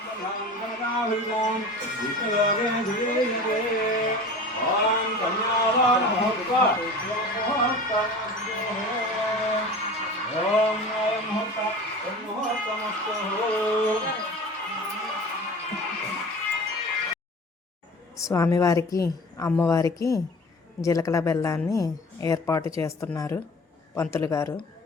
గణనాభిమాం విష్ణుయోగే ధీరే ఓం కన్యాదాన మహోత్సవ ఓం మహోత్సవమస్తు. స్వామివారికి అమ్మవారికి జీలకల బెల్లాన్ని ఏర్పాటు చేస్తున్నారు పంతులు గారు.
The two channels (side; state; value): both; normal; correlation 0.38